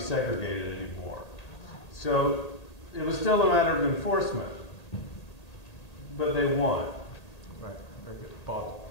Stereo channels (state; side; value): late; right; 1.8 ms